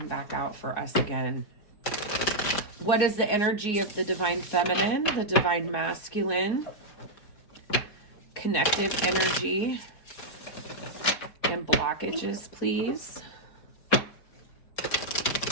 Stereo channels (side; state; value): right; late; 4.7 ms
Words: back out for us again. What is the energy of the Divine Feminine, the Divine Masculine, connective energy, and blockages, please?